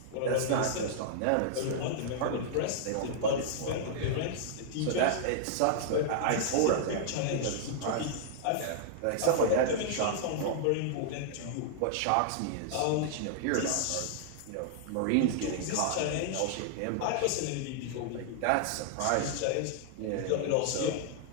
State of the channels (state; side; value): different; both; correlation -0.01